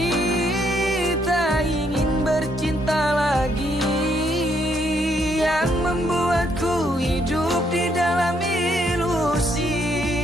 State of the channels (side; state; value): both; normal; correlation 0.73